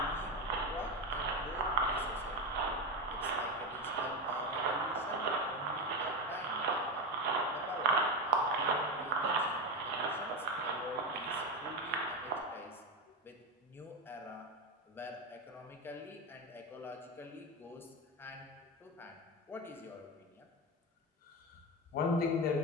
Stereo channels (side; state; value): both; normal; correlation 0.15